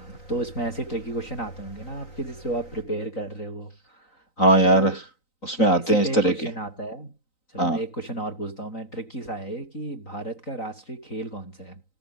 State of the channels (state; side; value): late; right; 3.9 ms